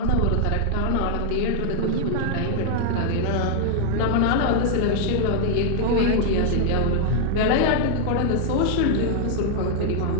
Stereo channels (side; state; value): both; different; correlation 0.00